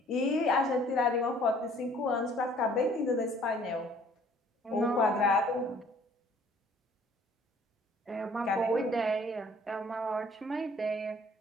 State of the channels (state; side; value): normal; both; correlation 0.56